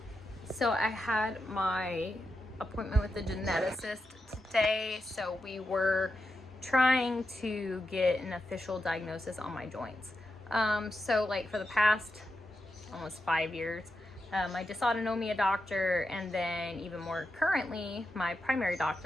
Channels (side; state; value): both; normal; correlation 0.88